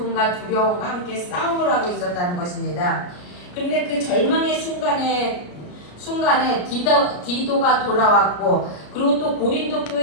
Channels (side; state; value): right; late; 34 ms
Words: 두려움과 함께 싸움을 하고 있었다는 것입니다. 그런데 그 절망의 순간에 디도가 돌아왔고, 그리고 또 고린도